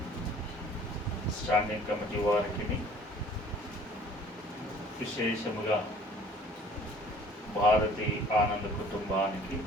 స్టాండింగ్ కమిటీ వారికి, విశేషముగా భారతి ఆనంద్ కుటుంబానికి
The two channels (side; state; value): both; normal; correlation 0.53